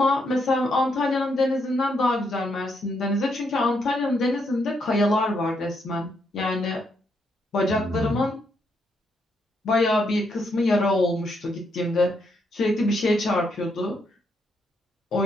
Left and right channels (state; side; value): normal; both; correlation 0.77